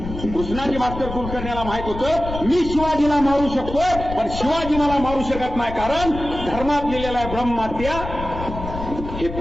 कृष्णाजी भास्कर कुलकर्ण्याला माहित होतं मी शिवाजीला मारू शकतोय, पण शिवाजी मला मारू शकत नाही, कारण धर्मात लिहिलेला आहे ब्रह्महत्या हे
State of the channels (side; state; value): left; noise; rumble, 9 dB below the sound